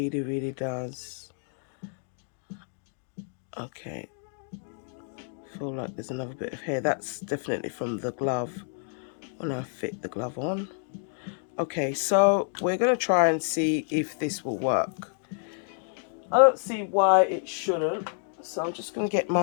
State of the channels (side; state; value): right; silent; 59 dB below the other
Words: really does. Okay. Feel like there's another bit of hair. That's definitely from the glove when I fit the glove on. Okay, so we're going to try and see if this will work. I don't see why it shouldn't. So I'm just going to get